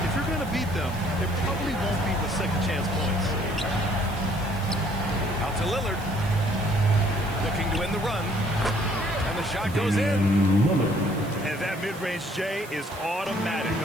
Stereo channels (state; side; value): noise; right; hiss, 19 dB below the sound